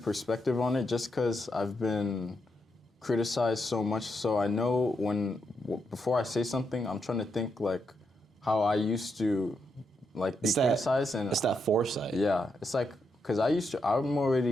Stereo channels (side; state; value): both; normal; correlation 0.82